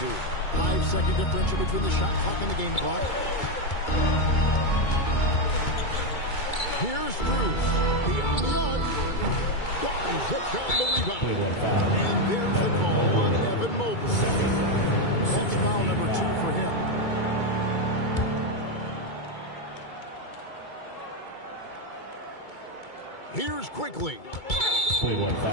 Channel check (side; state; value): right; late; 2.3 ms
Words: 5-second differential between the shot clock and the game clock. Here's Cruz. Beyond the arc. Barnes hits down the rebound. And there's the call on Evan Mobley. That's foul number 2 for him. Here's Quickly. Play 1